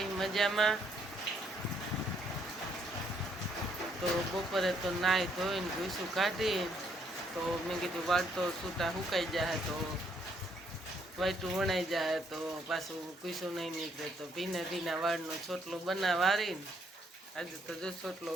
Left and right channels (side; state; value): both; normal; correlation 0.71